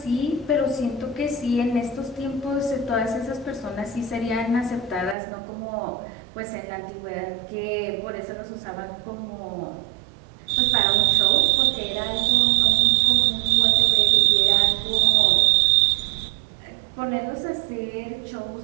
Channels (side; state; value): left; drops out; at 5.2 s